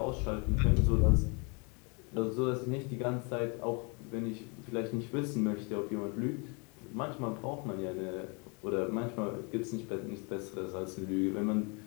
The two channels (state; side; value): quieter; right; 32.5 dB